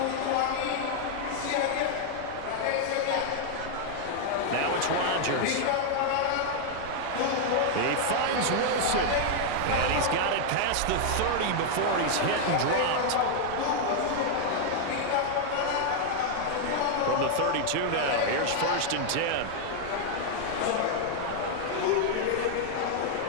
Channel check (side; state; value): both; different; correlation 0.00